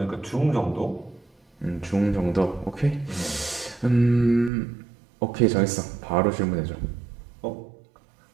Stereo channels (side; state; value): left; drops out; at 4.5 s